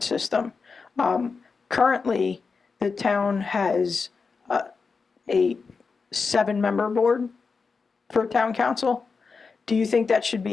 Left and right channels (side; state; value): right; quieter; 4.8 dB